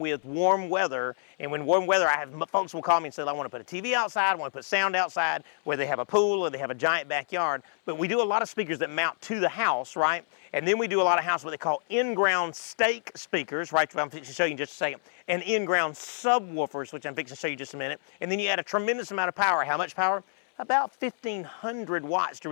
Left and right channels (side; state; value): right; silent; 60 dB below the other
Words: warm weather, and when warm weather, folks will call me and say, I want to put a TV outside, I want to put sound outside, where they have a pool or they have a giant backyard. But we do a lot of speakers that mount to the house, right? And then we do a lot of house what they call in-ground stake speakers, right? I'm fixing to show you in just a second. And in-ground subwoofers, which I'm fixing to show you in just a minute. And then you add a tremendous amount of power. How much power? About 1,500 watts to